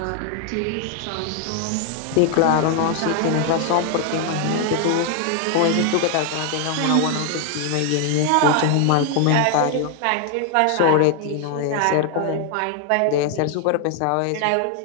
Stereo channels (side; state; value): both; different; correlation 0.00